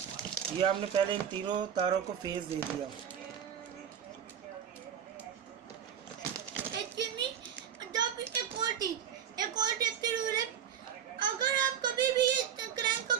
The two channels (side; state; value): left; quieter; 8.6 dB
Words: ये हमने पहले इन तीनों तारों को फेस दे दिया। एक और रूल है, अगर आप कभी भी क्रैंक का